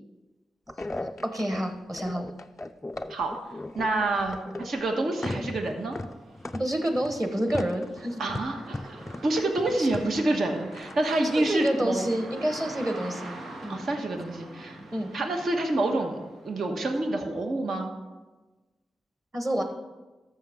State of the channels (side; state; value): both; normal; correlation 0.89